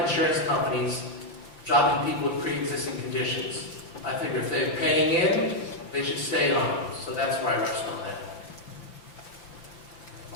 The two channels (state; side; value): late; right; 5.9 ms